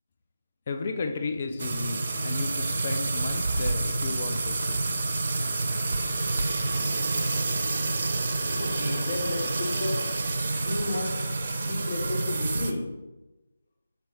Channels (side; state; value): both; inverted; correlation -0.91